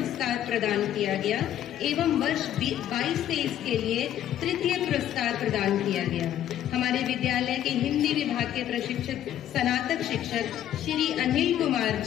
प्रदान किया गया एवं वर्ष 22-23 के लिए तृतीय पुरस्कार प्रदान किया गया। हमारे विद्यालय के हिंदी विभाग के प्रशिक्षक स्नातक शिक्षक श्री अनिल कुमार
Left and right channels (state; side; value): quieter; right; 11.3 dB